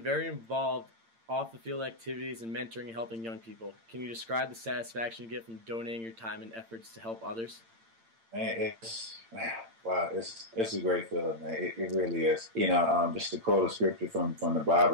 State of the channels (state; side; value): late; left; 8.8 ms